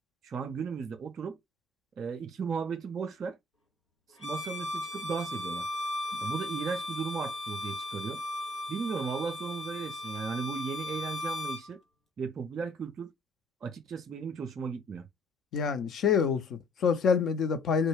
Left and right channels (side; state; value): both; normal; correlation 0.59